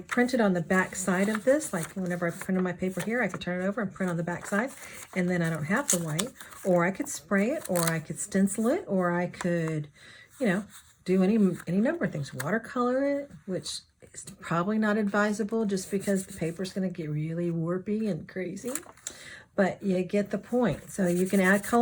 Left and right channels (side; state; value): both; identical; correlation 1.00